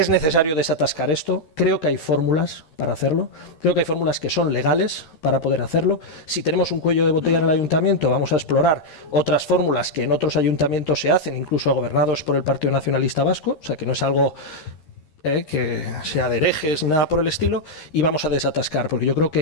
necesario desatascar esto. Creo que hay fórmulas para hacerlo. Creo que hay fórmulas que son legales para poder hacerlo. Si tenemos un cuello de botella en el ayuntamiento, vamos a explorar otras fórmulas que en otros ayuntamientos se hacen, incluso gobernados por el Partido Nacionalista Vasco, o sea, que no es algo que sea de herejes ni nada por el estilo, y vamos a desatascar, porque yo creo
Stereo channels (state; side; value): late; right; 13 ms